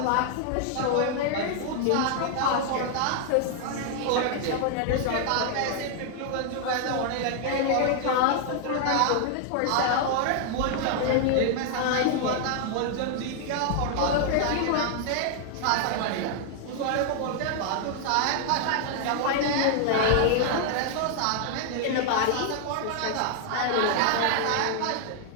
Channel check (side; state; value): both; different; correlation 0.00